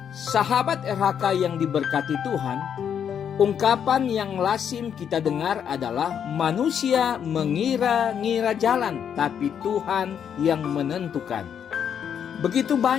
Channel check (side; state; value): right; quieter; 8.3 dB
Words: Sahabat RHK yang diberkati Tuhan, ungkapan yang lazim kita dengar adalah manusia mengira-ngira jalan, tapi Tuhan yang menentukan. Begitu